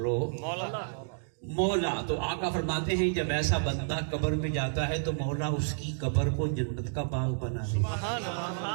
مولا. تو آقا فرماتے ہیں جب ایسا بندہ قبر میں جاتا ہے تو مولا اس کی قبر کو جنت کا باغ بنا دیتا.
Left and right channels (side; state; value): left; silent; digital silence